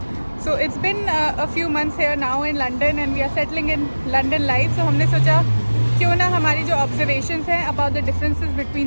So it's been a few months here now in London and we are settling in London life. So हमने सोचा क्यों ना हमारी जो observations हैं about the differences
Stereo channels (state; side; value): inverted; both; correlation -1.00